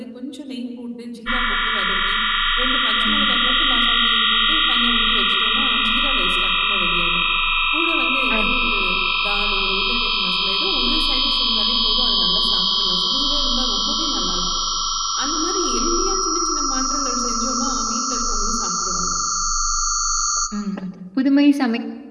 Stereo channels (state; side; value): identical; both; correlation 1.00